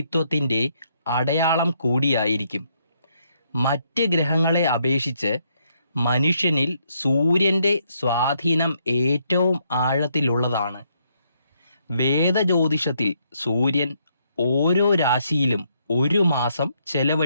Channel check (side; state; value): both; inverted; correlation -0.73